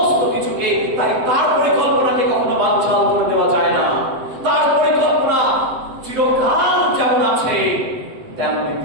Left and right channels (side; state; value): left; late; 7.8 ms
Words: কিছুকে, তাই তার পরিকল্পনাকে কখনো বানচাল করে দেওয়া যায় না। তার পরিকল্পনা চিরকাল যেমন আছে তেমনি